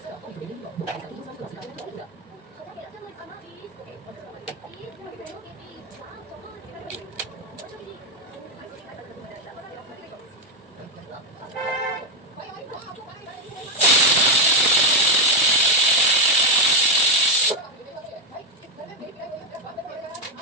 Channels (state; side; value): normal; both; correlation 0.05